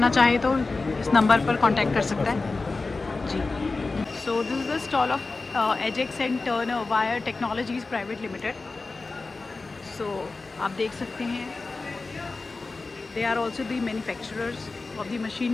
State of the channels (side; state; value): right; quieter; 3.7 dB